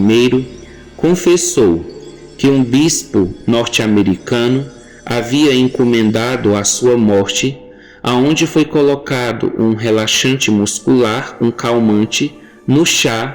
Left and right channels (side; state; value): both; identical; correlation 1.00